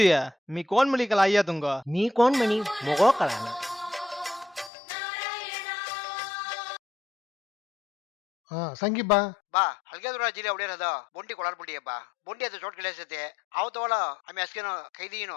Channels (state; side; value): drops out; right; at 4.7 s